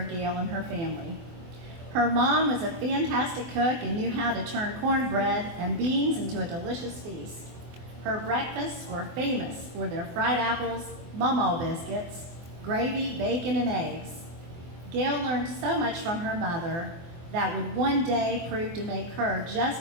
Gail and her family. Her mom was a fantastic cook and knew how to turn cornbread and beans into a delicious feast. Her breakfasts were famous for their fried apples, mama biscuits, gravy, bacon, and eggs. Gail learned so much from her mother that would one day prove to make her just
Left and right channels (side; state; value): left; late; 24 ms